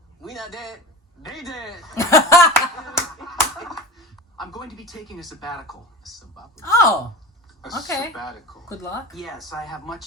we not dead. They dead. I'm going to be taking a sabbatical. Oh, A okay. sabbatical. Good luck. Yes, I have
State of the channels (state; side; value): normal; both; correlation 0.32